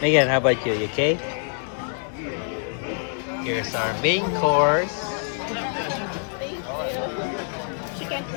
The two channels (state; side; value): silent; right; 62 dB below the other